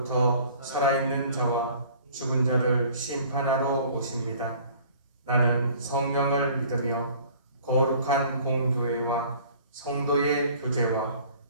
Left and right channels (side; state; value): both; inverted; correlation -0.51